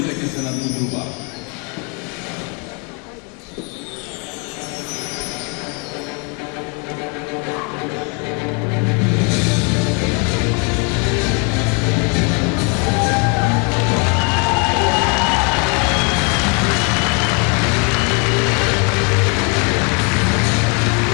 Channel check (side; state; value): right; quieter; 34.7 dB